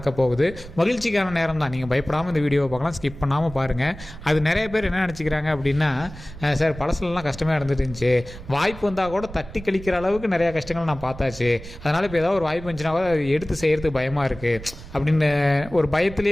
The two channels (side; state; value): right; noise; rumble, 15 dB below the sound